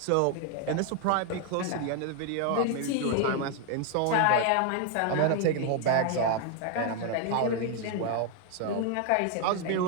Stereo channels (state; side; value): different; both; correlation 0.01